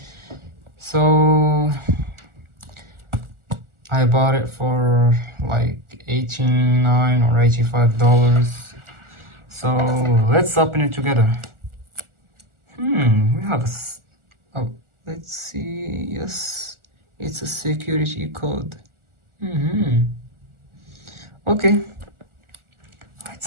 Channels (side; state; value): left; late; 1.4 ms